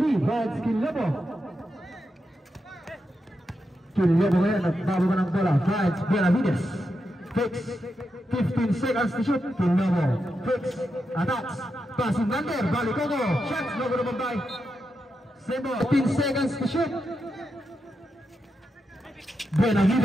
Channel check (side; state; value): both; normal; correlation 0.86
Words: France Kilebo. Kilebo ngayon. Nagbago ka ng bola. France Benavides. Fix. 15 seconds to shoot. Kilebo. Fix. Attacks. Passing under. Balikomo. Shots. No good naman by Sebo. 15 seconds to shoot.